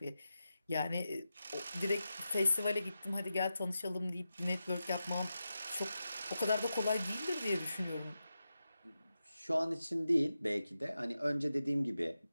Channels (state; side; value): inverted; both; correlation -0.91